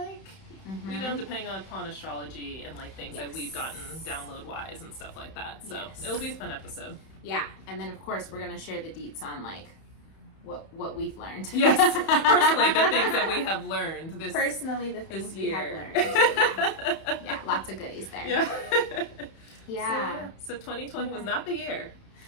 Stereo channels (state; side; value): late; right; 31 ms